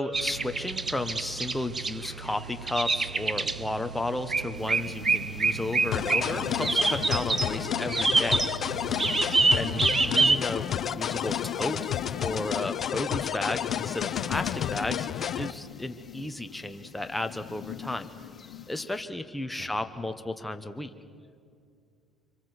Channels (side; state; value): both; normal; correlation 0.76